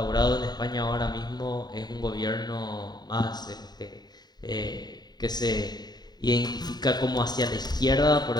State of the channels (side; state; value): right; late; 0.20 ms